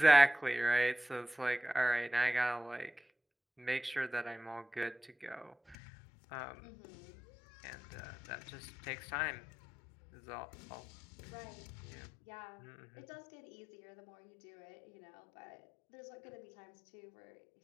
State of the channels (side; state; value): right; drops out; at 5.8 s